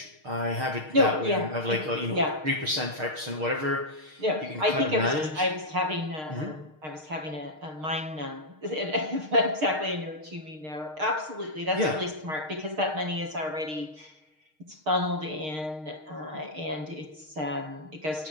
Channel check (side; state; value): left; late; 6.5 ms